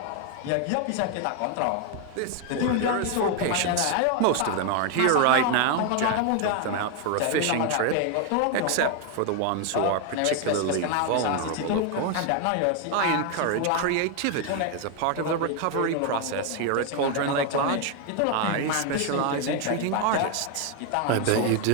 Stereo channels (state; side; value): different; both; correlation 0.01